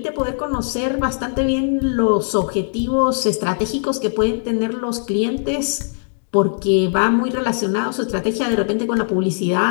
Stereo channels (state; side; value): silent; right; digital silence